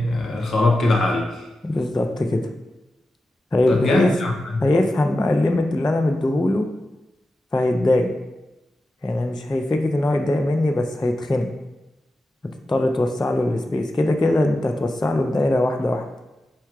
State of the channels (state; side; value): normal; both; correlation 0.92